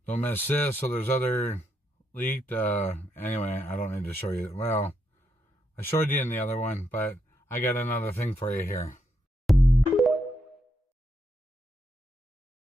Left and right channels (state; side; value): normal; both; correlation 0.80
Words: Don't miss this. So there's other leaked. Anyway, I don't need to show you. Well, I showed you in the other one, but I got another thing for you here.